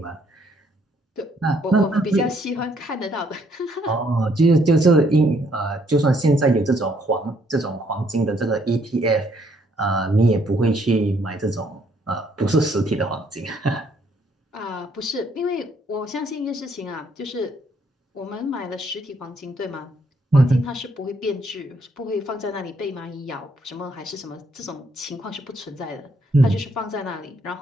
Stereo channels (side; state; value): both; normal; correlation 0.69